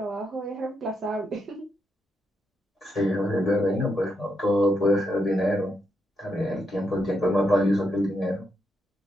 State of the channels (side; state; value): both; normal; correlation 0.81